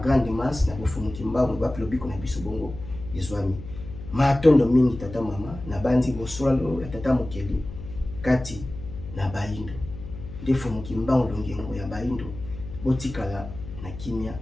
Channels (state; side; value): noise; left; hum, 12 dB below the sound